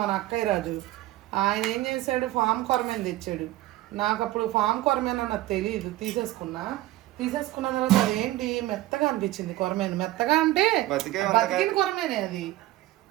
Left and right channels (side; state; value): left; quieter; 16.6 dB